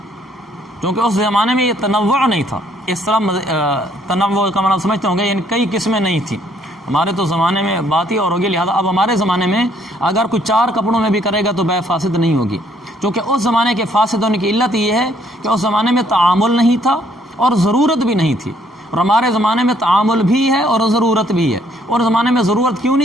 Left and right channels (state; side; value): normal; both; correlation 0.66